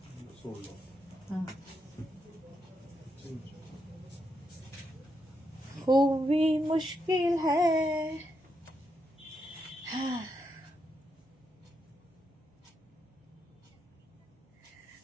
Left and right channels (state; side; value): normal; both; correlation 0.82